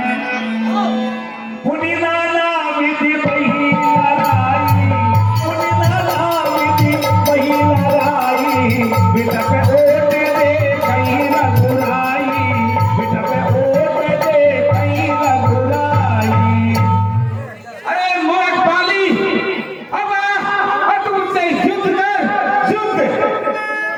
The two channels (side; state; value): both; identical; correlation 1.00